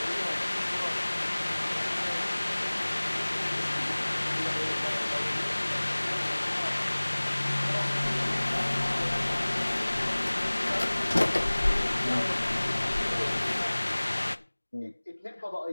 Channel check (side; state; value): both; inverted; correlation -1.00